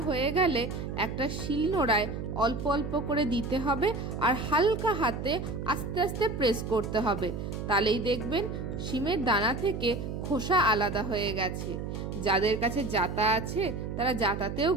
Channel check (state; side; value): noise; right; hum, 5 dB below the sound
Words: হয়ে গেলে একটা শিলনোড়ায় অল্প অল্প করে দিতে হবে, আর হালকা হাতে আস্তে আস্তে প্রেস করতে হবে। তাহলেই দেখবেন শিমের দানা থেকে খোসা আলাদা হয়ে গেছে। যাদের কাছে জাতা আছে তারা জাতাতেও